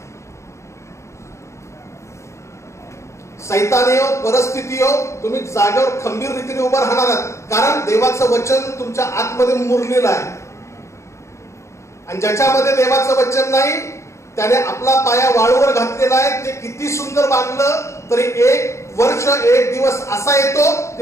सैतानी हो, परिस्थिती हो, तुम्ही जागेवर खंबीर रीतीने उभं राहणार आहात, कारण देवाचं वचन तुमच्या आतमध्ये मुरलेलं आहे. आणि ज्याच्यामध्ये देवाचं वचन नाही त्याने आपला पाया वाळूवर घातलेला आहे. ते किती सुंदर बांधलं तरी एक वर्ष एक दिवस असा येतो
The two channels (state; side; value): late; right; 0.14 ms